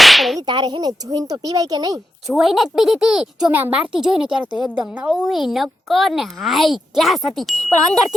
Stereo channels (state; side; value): normal; both; correlation 0.87